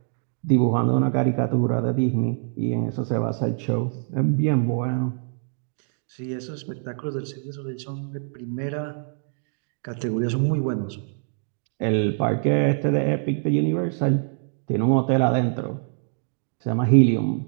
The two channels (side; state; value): left; silent; 60 dB below the other